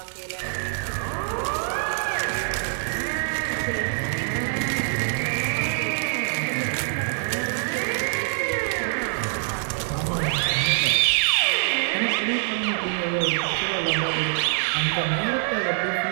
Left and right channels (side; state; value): left; silent; digital silence